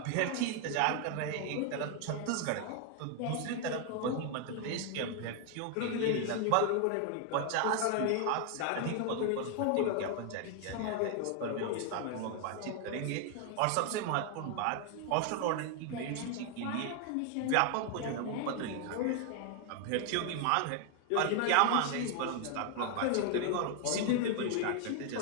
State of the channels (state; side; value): different; both; correlation 0.00